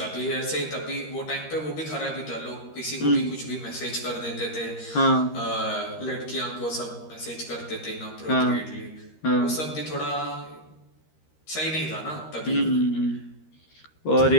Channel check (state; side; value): late; right; 13 ms